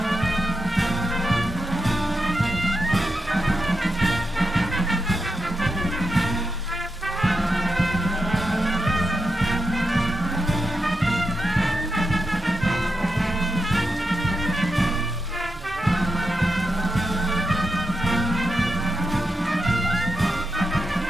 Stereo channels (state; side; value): normal; both; correlation 0.86